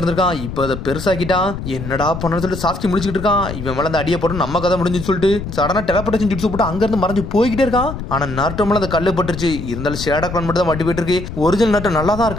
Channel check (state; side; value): noise; left; rumble, 8 dB below the sound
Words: இப்ப அதை பெருசாக்கிட்டான். என்னடா பண்ணு சொல்லிட்டு சாஸ்கி முடிச்சுக்கிட்டு இருக்கான். இவன் மேல அந்த அடியை போட்டு நம்ம கதை முடிஞ்சுன்னு சொல்லிட்டு சடனா டெலபோர்டேஷன் ஜுட்ஸு போட்டு அங்க இருந்து மறைஞ்சு போய்கிட்டே இருக்கான். ஆனா நருட்டோ மேல அந்த கல்லு பட்டுருச்சு. இருந்தாலும் ஷேடோ கிளான் மட்டும் தான் வட்டி போயிட்டு இருக்கு. ஒரிஜினல் நருட்டோ நல்லா தான்